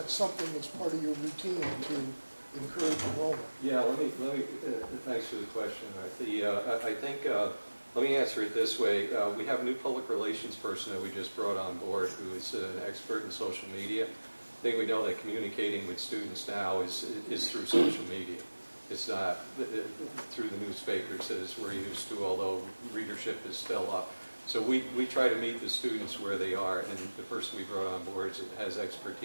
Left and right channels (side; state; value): both; inverted; correlation -1.00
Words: something that's part of your routine to encourage enrollment? Yeah, let me thanks for the question. I think, let me answer it this way. We have a new public relations person that we just brought on board who is an expert in social media. I think we know that communicating with students now is through social media. It's not through the newspapers as we're used to, although readership is still up. So we try to meet the students where they are, and the person we brought on board has